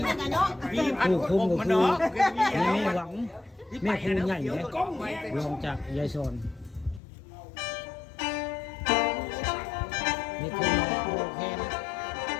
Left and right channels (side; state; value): right; drops out; at 7.0 s